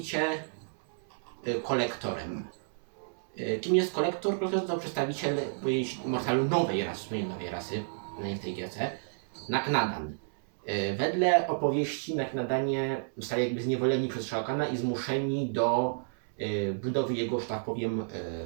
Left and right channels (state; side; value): silent; left; 57 dB below the other